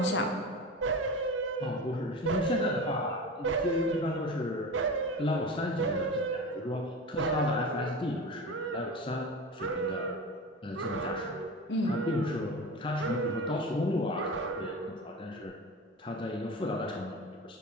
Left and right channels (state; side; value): normal; both; correlation 0.29